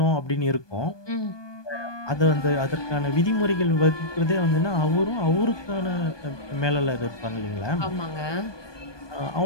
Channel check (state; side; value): late; right; 1.2 ms